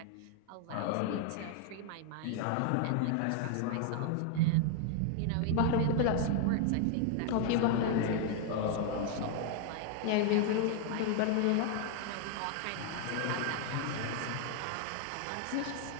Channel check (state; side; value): different; both; correlation 0.00